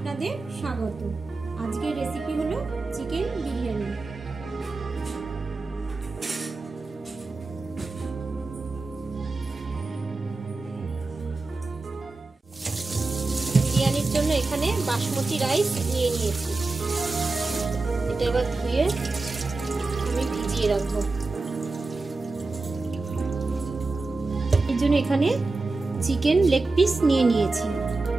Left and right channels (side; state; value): left; quieter; 3.5 dB